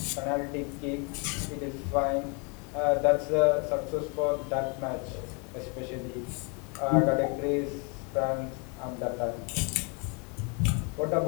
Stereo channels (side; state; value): right; quieter; 34.2 dB